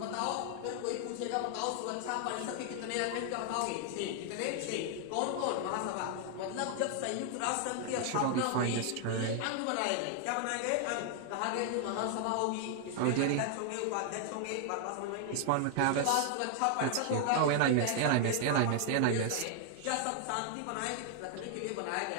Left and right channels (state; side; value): different; both; correlation 0.00